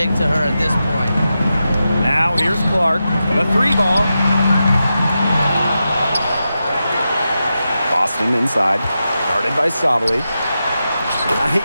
to her at this point. Now here's Clark. The 3 ball. Boston inside, guarded by Sabali.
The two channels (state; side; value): inverted; both; correlation -0.90